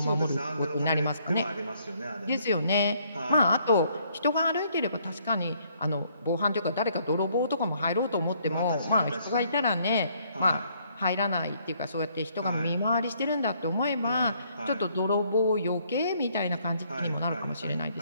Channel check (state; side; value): inverted; both; correlation -0.67